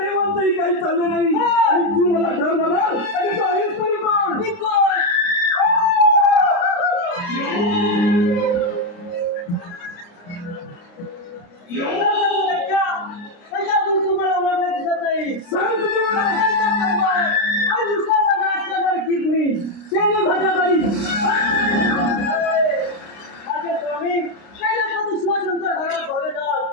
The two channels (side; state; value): right; late; 29 ms